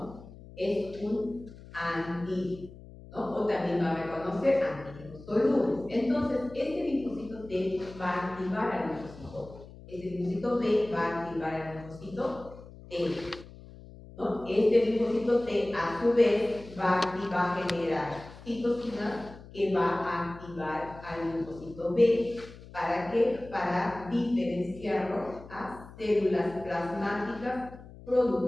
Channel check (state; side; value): noise; left; hum, 18 dB below the sound